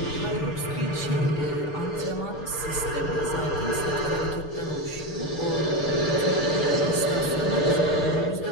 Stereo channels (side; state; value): right; late; 6.8 ms